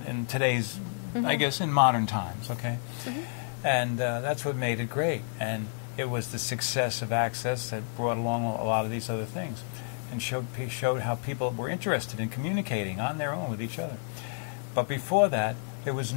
today's, I guess, in modern times. Okay, and that's what made it great. And it was the success of Access that brought along a lot of these other things, and showed how people were interested in communicating on their own with each other. But before that, there was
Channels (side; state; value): right; silent; digital silence